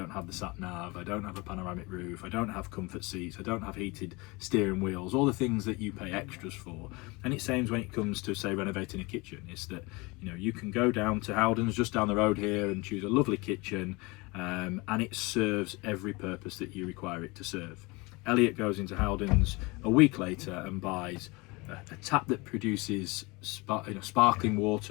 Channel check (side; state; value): right; quieter; 25.5 dB